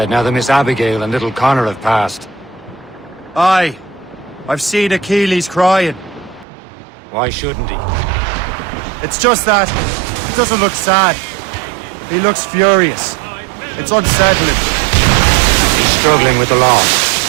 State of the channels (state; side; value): drops out; left; at 6.5 s